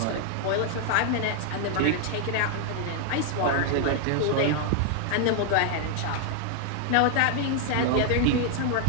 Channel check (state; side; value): different; both; correlation 0.00